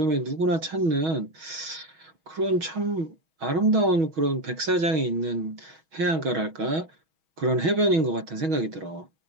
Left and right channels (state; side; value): late; left; 6.2 ms